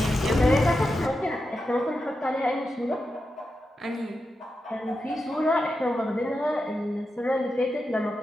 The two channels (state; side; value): normal; both; correlation 0.89